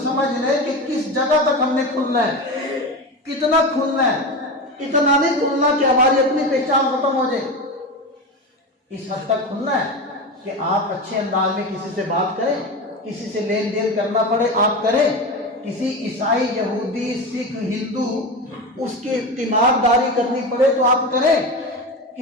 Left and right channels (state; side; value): normal; both; correlation 0.23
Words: سمجھ لیں کہ کس جگہ تک ہم نے کھلنا ہے، کتنا کھلنا ہے، اتنا نہیں کھلنا کہ ہماری اپنی پہچان ختم ہو جائے۔ اس حد تک کھلنا ہے کہ آپ اچھے انداز میں کسی سے بات کریں، کسی سے لین دین کرنا پڑے آپ کریں، کسی عیسائی، یہودی، سکھ، ہندو اس کی تیمارداری کرنی پڑے تو آپ کریں،